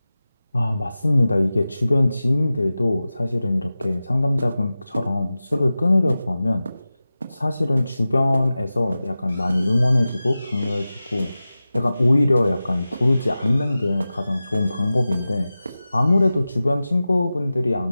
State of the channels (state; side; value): inverted; both; correlation -0.95